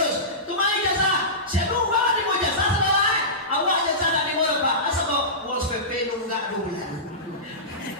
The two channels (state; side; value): normal; both; correlation -0.19